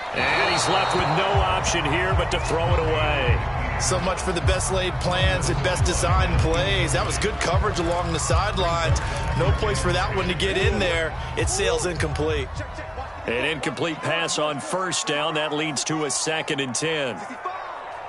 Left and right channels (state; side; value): identical; both; correlation 1.00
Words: And he's left with no option here but to throw it away. So much for the best laid plans and best designed plays. That was good coverage along the sidelines. No place for that one to get in there. It sails incomplete. An incomplete pass on 1st down. That leads to a 2nd and 10.